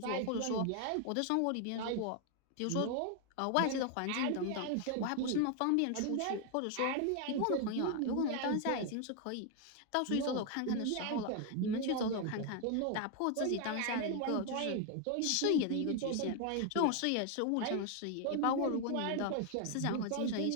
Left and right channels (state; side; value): different; both; correlation 0.01